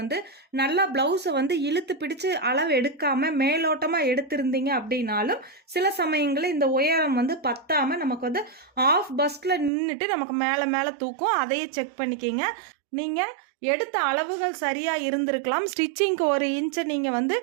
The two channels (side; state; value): left; drops out; at 9.7 s